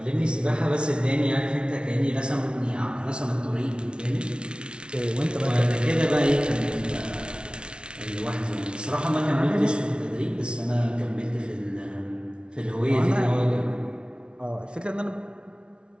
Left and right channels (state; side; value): late; left; 0.057 ms